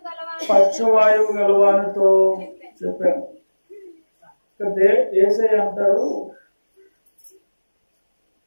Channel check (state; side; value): inverted; both; correlation -1.00